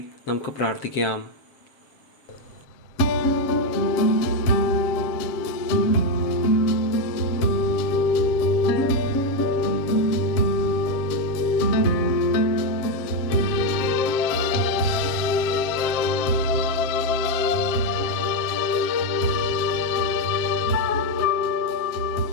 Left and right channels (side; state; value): right; late; 7.4 ms